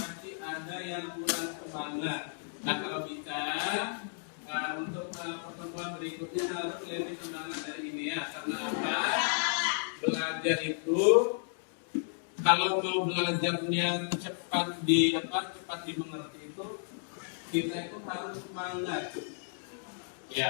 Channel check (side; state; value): right; silent; digital silence